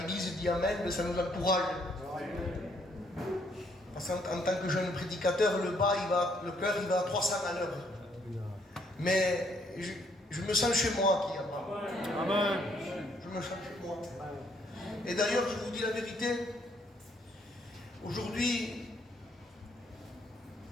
dit Amen, ça nous encourage. Parce qu'en tant que jeune prédicateur, le cœur il va à 300 à l'heure. Mais je me sens chez moi qui a Amen. Je me sens chez moi. Et d'ailleurs, je vous dis la vérité, aujourd'hui,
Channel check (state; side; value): normal; both; correlation 0.69